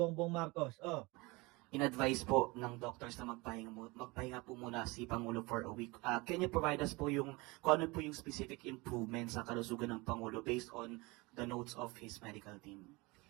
Marcos. Oh, In-advise po ng doctors na magpahinga po muna si Pangulo for a week. Can you provide us po kung ano po yung specific improvements sa kalusugan ng Pangulo based on the notes of his medical team?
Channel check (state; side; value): quieter; left; 24.5 dB